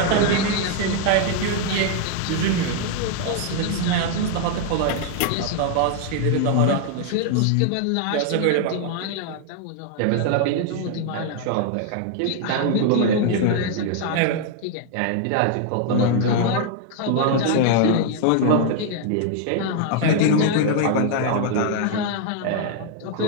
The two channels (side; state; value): both; different; correlation 0.00